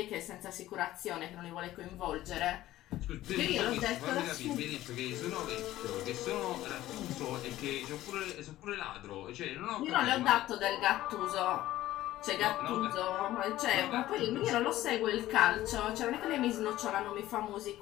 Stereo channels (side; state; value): right; quieter; 15.0 dB